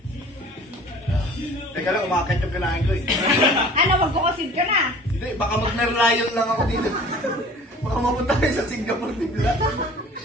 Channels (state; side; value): normal; both; correlation 0.47